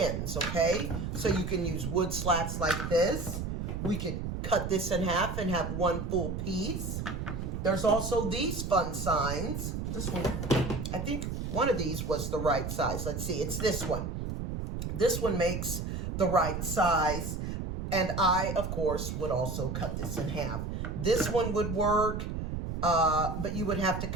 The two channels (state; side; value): noise; right; rumble, 4 dB below the sound